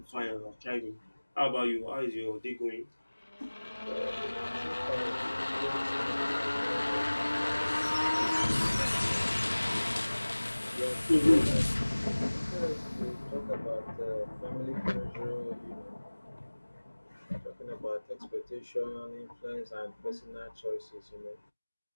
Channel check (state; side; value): inverted; both; correlation -1.00